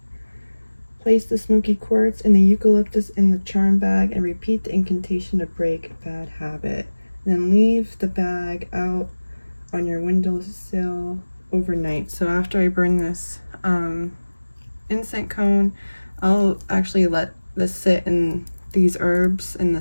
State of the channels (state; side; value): inverted; both; correlation -1.00